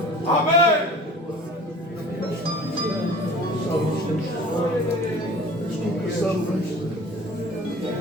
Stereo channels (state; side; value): normal; both; correlation 0.43